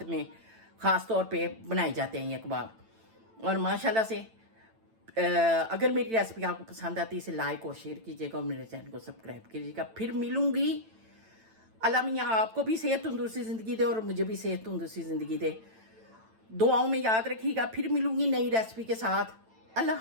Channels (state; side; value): late; left; 9.0 ms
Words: में ख़ास तौर पे बनाए जाते हैं ये कबाब। और माशाल्लाह से अगर मेरी रेसिपी आपको पसंद आती है इसे लाइक और शेयर कीजिएगा और मेरे चैनल को सब्सक्राइब कीजिएगा। फिर मिलूंगी। अल्लाह मियाँ आपको भी सेहत तंदुरुस्ती ज़िंदगी दे और मुझे भी सेहत तंदुरुस्ती ज़िंदगी दे। दुआओं में याद रखिएगा। फिर मिलूंगी नई रेसिपी के साथ।